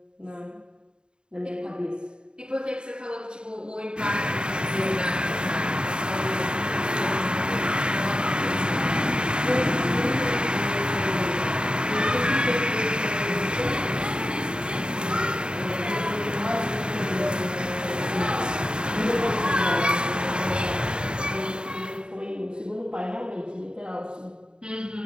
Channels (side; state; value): left; late; 0.050 ms